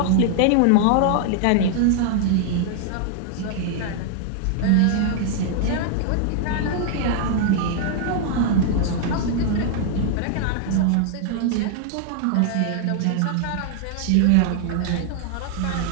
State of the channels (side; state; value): both; different; correlation 0.00